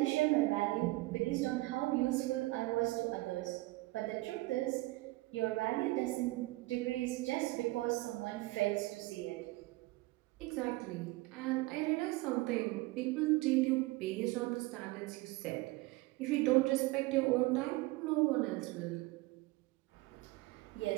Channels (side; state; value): left; quieter; 20.9 dB